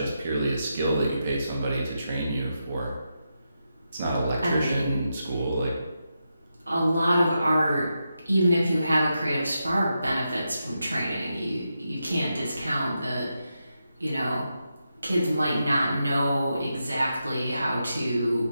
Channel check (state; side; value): inverted; both; correlation -0.86